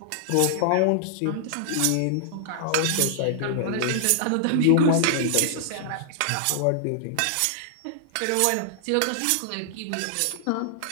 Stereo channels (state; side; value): different; both; correlation -0.01